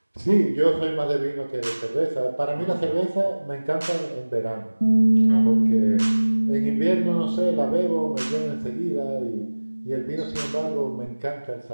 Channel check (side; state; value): both; inverted; correlation -1.00